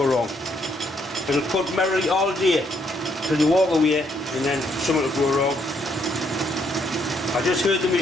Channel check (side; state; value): both; normal; correlation 0.72